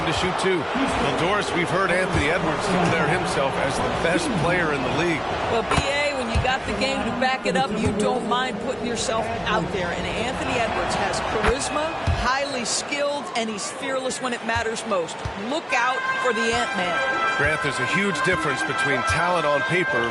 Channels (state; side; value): identical; both; correlation 1.00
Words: to shoot 2. Well, Doris, we've heard Anthony Edwards declare himself as the best player in the league. Well, B.A., when you got the game to back it up, you don't mind putting yourself out there. And Anthony Edwards has charisma, highly skilled, and he's fearless when it matters most. Look out for the Ant-Man. Grant, there's a huge difference between talent on